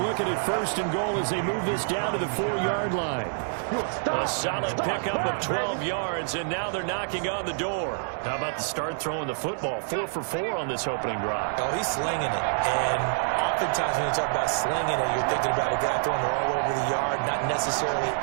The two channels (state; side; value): silent; left; digital silence